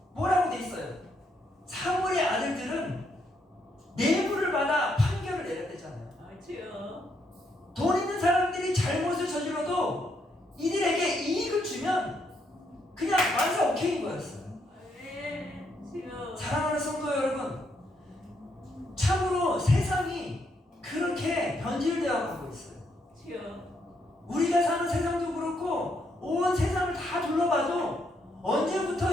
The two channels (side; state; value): both; normal; correlation 0.76